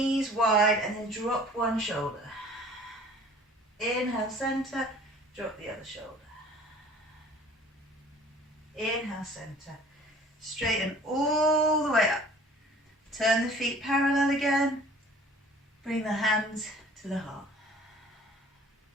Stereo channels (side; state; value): both; normal; correlation 0.50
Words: wide and then drop one shoulder. Inhale, center. Drop the other shoulder. Inhale, center. Straighten all the way up. Turn the feet parallel again. Bring the hands to the heart.